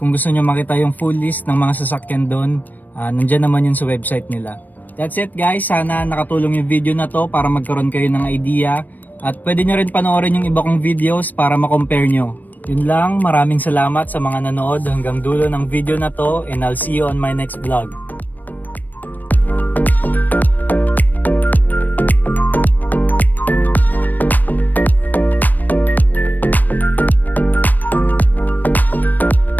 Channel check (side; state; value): right; late; 0.086 ms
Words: gusto nyo makita yung full list ng mga sasakyan doon, nandyan naman yun sa website nila. That's it guys, sana nakatulong yung video na to para magkaroon kayo ng idea at pwede nyo rin panoorin yung iba kong videos para makompare nyo. Yun lang, maraming salamat sa mga nanood hanggang dulo ng video na to and I'll see you on my next vlog.